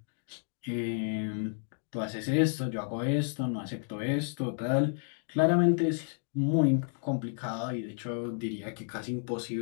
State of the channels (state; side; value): silent; right; 57 dB below the other